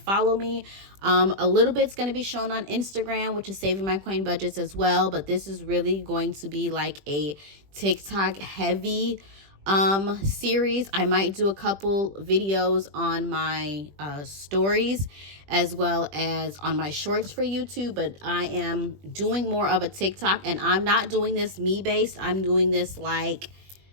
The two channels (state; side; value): late; left; 20 ms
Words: me. A little bit's going to be shown on Instagram, which is Saving My Coin Budgets as well, but this is really going to be like a TikTok heavy series. I might do a couple videos on my stories as well as on my shorts for YouTube, but I am doing more of a TikTok, and I'm not doing this me based. I'm doing this like